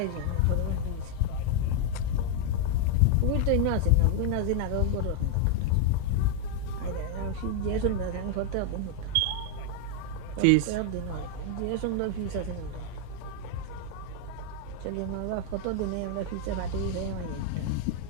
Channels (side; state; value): both; different; correlation 0.00